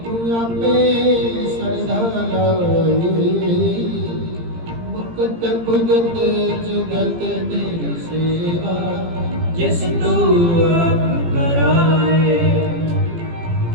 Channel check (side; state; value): left; late; 17 ms